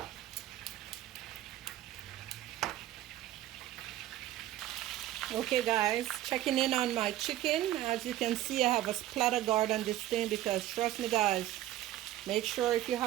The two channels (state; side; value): quieter; left; 13.9 dB